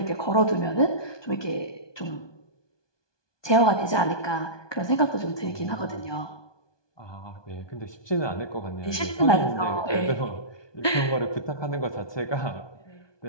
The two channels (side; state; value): right; late; 1.2 ms